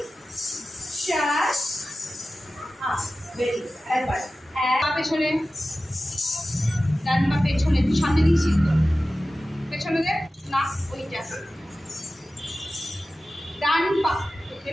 7 8 ভেরি একবার এক পা পেছনে ডান পা পেছনে তুই সামনে দিয়েছিস তো পেছনে দে না ওইটা ডান পা না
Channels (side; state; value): both; normal; correlation 0.95